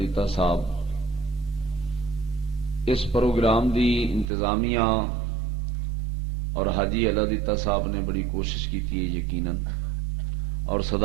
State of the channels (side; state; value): left; drops out; at 4.3 s